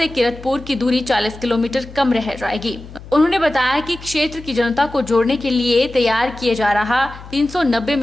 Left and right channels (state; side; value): noise; left; hum, 16 dB below the sound